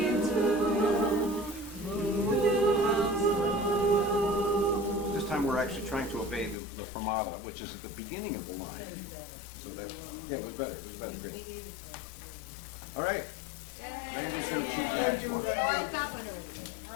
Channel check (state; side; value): drops out; right; at 6.6 s